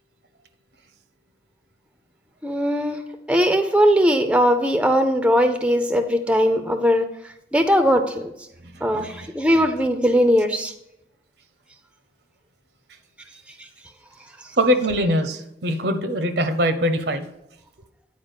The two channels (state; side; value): normal; both; correlation 0.70